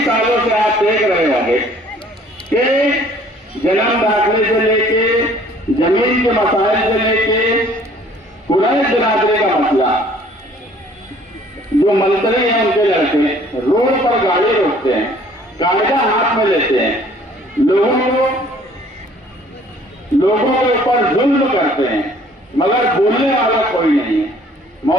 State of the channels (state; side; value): normal; both; correlation 0.56